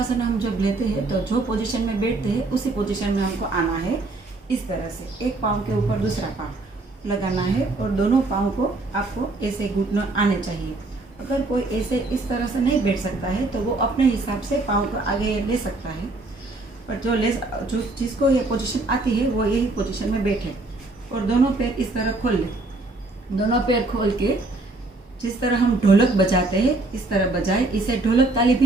हम जब लेते हैं तो जो पोजीशन में बैठते हैं उसी पोजीशन में हमको आना है। इस तरह से एक पाँव के ऊपर दूसरा पाँव लगाना है और दोनों पाँव को आपको ऐसे घुटने आने चाहिए। अगर कोई ऐसे इस तरह से नहीं बैठ सकता है तो वो अपने हिसाब से पाँव को आगे ले सकता है, पर जो जिसको ये पोजीशन आती है वो यही पोजीशन में बैठे और दोनों पैर इस तरह खोल ले। दोनों पैर खोल के जिस तरह हम ढोलक बजाते हैं इस तरह बजाए, इसे ढोलक ताली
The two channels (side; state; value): left; quieter; 3.1 dB